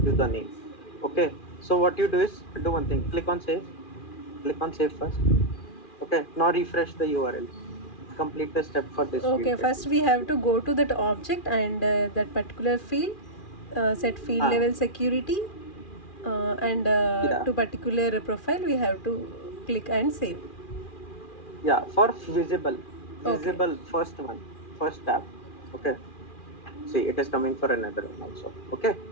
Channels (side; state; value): right; late; 2.4 ms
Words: you the name. Okay. So what you do is do one thing. Click on save. Click on save first. Okay. Now refresh the URL. Complete the step for this field Okay, at first least. we have to go to that object and that particular field, set field Ah, level security, and yeah. to particular profile we have to click and save. Yeah. For visible, Okay, visible first one, first tab. Okay. See, it is coming for another one also. Okay.